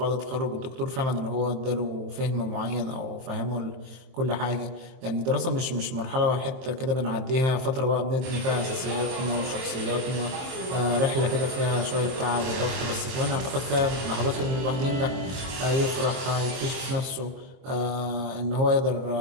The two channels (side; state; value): left; late; 23 ms